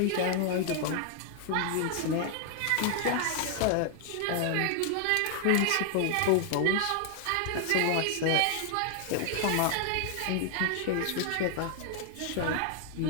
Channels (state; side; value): different; both; correlation 0.00